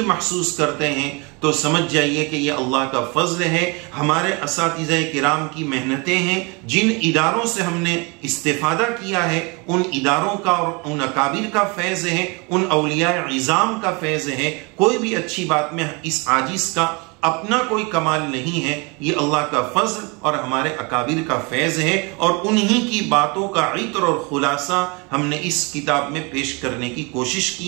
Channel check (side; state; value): left; quieter; 29.5 dB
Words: महसूस करते हैं, तो समझ जाइए कि ये अल्लाह का फजल है। हमारे असातिज़े किराम की मेहनतें हैं, जिन इदारों से हमने इस्तेफादा किया है उन इदारों का और उन अकाबिर का फैज़ है, उन औलिया इज़ाम का फैज़ है। कोई भी अच्छी बात में इस आजिज़ का अपना कोई कमाल नहीं है, ये अल्लाह का फजल और हमारे अकाबिर का फैज़ है। और उन्हीं की बातों का इत्र और खुलासा हमने इस किताब में पेश करने की कोशिश